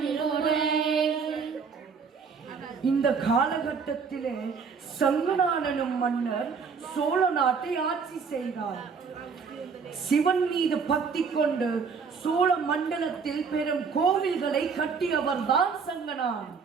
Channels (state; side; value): quieter; left; 5.6 dB